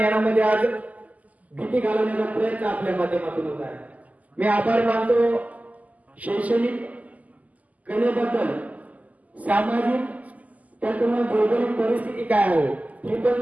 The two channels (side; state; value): left; late; 0.076 ms